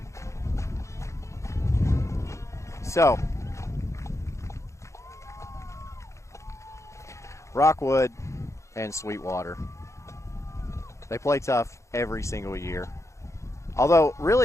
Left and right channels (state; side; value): late; right; 0.14 ms